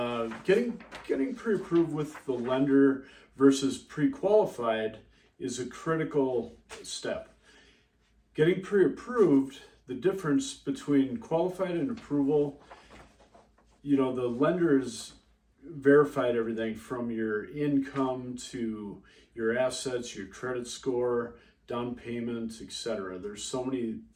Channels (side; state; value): both; identical; correlation 1.00